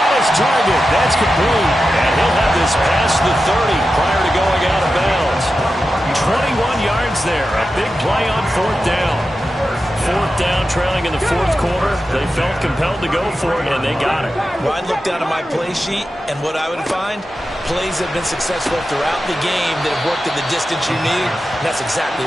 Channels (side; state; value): both; normal; correlation 0.91